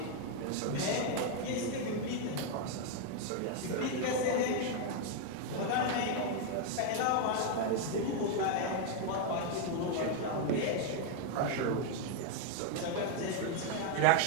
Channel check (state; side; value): different; both; correlation 0.00